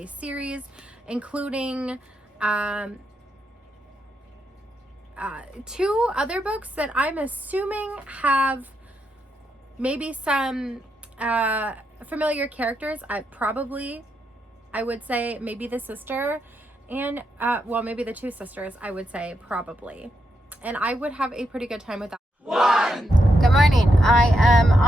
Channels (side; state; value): both; normal; correlation 0.83